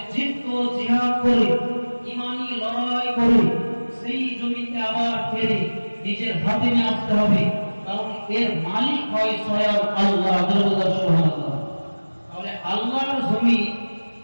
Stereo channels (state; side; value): inverted; both; correlation -1.00